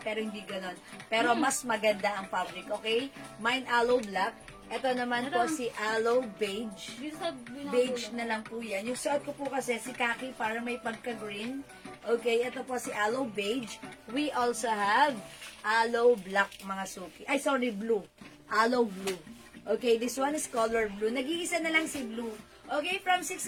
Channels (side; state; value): both; identical; correlation 1.00